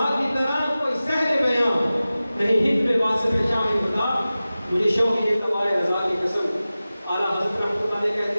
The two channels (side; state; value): both; inverted; correlation -0.96